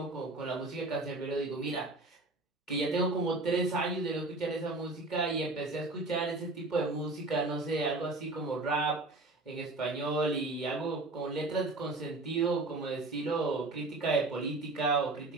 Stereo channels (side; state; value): left; quieter; 3.1 dB